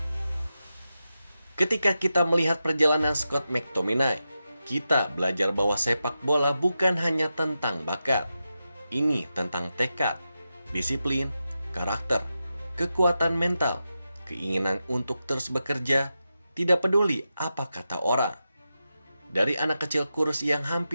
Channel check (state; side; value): inverted; both; correlation -0.90